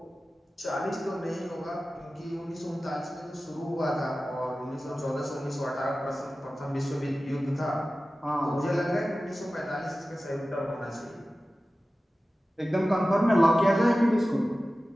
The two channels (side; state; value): both; normal; correlation 0.96